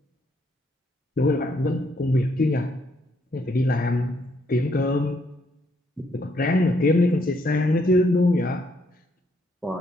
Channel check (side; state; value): both; normal; correlation 0.72